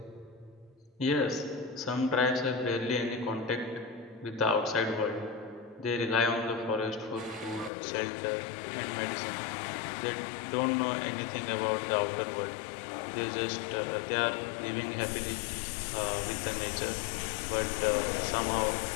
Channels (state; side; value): drops out; right; at 7.7 s